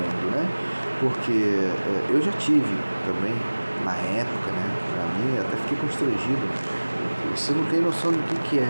né? Porque eu já tive também, na época, né? Pra mim, até fiquei constrangido. Você não tem noção do que é.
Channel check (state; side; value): inverted; both; correlation -1.00